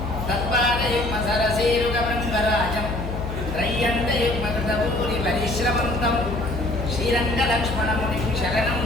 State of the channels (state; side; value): noise; left; hum, 6 dB below the sound